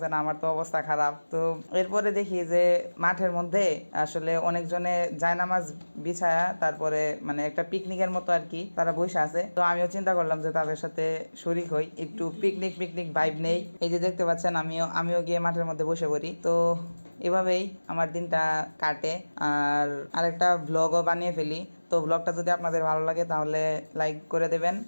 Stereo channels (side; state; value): both; inverted; correlation -1.00